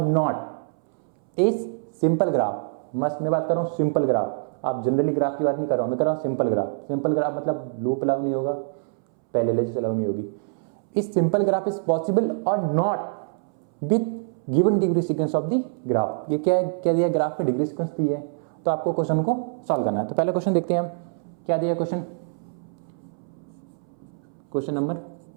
इज सिंपल ग्राफ, मस्त मैं बात कर रहा हूँ सिंपल ग्राफ, आप जनरली ग्राफ की बात नहीं कर रहा हूँ, मैं कर रहा हूँ सिंपल ग्राफ। सिंपल ग्राफ मतलब लूप अलाउ नहीं होगा, पैरेलल अलाउ नहीं होगी। इस सिंपल ग्राफ इज पॉसिबल और not with given degree sequence of the graph. ये क्या है? क्या दिया? ग्राफ पे डिग्री सीक्वेंस दी है, तो आपको क्वेश्चन को सॉल्व करना है। तो पहले क्वेश्चन देखते हैं हम, क्या दिया क्वेश्चन? क्वेश्चन नंबर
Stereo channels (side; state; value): left; silent; 62 dB below the other